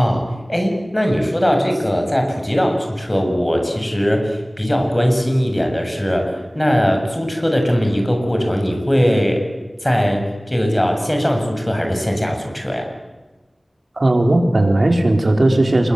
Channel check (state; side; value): normal; both; correlation 0.98